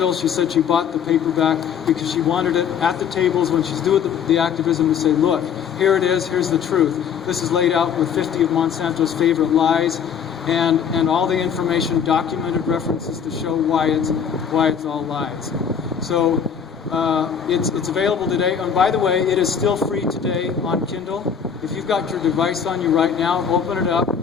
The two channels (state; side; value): quieter; right; 7.4 dB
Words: She said she bought the paperback because she wanted it at the tables when she's doing the activism to say, look, here it is, here's the truth. This is laid out with 50 of Monsanto's favorite lies and all the information, documented references to show why it's all lies. So it's available today. And by the way, it is still free today on Kindle. If you've got your device on you right now, open it up,